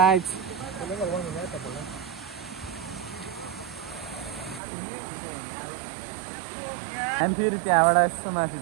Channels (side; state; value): left; drops out; at 4.6 s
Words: हामी फेरि त्यहाँबाट यस्तो माथि